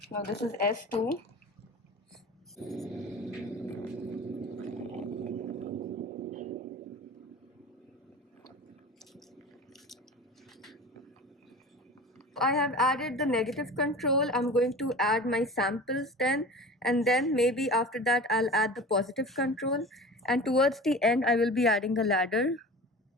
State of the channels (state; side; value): normal; both; correlation 0.36